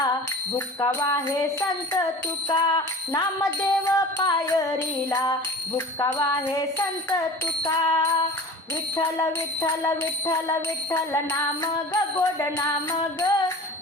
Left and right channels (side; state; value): both; normal; correlation 0.39